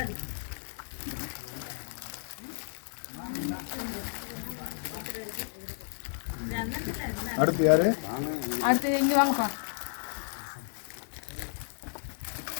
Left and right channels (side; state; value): right; silent; 56 dB below the other